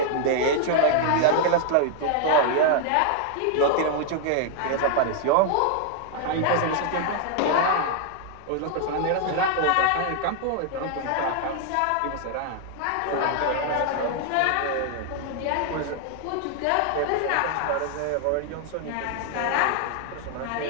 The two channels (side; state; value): both; different; correlation -0.01